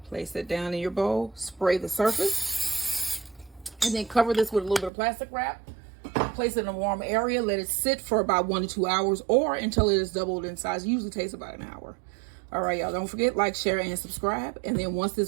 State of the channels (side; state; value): left; drops out; at 4.9 s